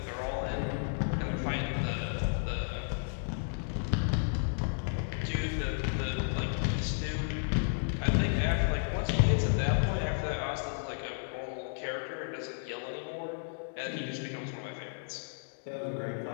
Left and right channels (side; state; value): right; silent; digital silence